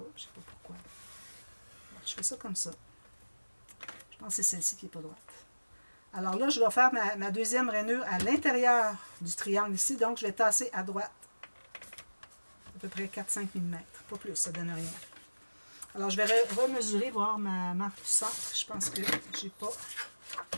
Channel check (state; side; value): inverted; both; correlation -1.00